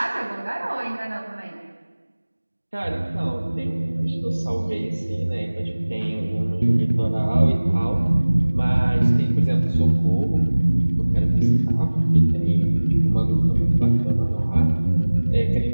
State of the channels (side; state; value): both; inverted; correlation -1.00